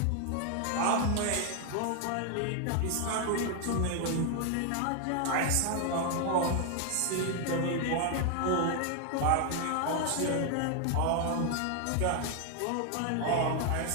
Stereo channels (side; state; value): both; different; correlation 0.00